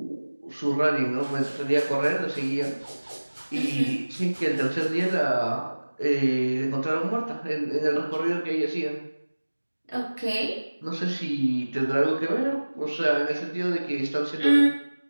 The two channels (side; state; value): both; inverted; correlation -1.00